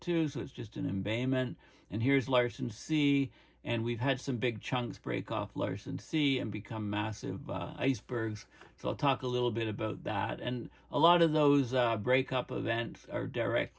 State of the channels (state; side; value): identical; both; correlation 1.00